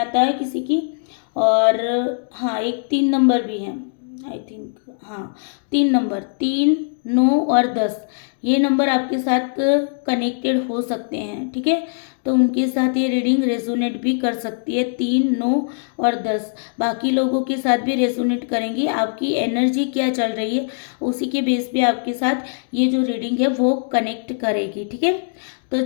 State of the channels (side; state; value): right; silent; digital silence